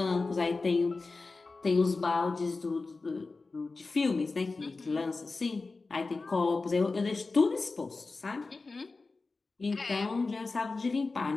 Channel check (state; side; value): quieter; right; 3.8 dB